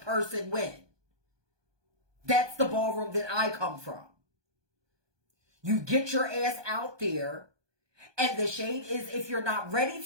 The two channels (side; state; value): left; late; 1.2 ms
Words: person win. That's the ballroom that I come from. You get your ass out there, and the shade is if you're not ready